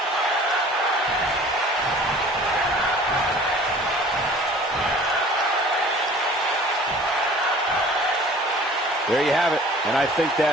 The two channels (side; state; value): both; normal; correlation 0.48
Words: There you have it. And I think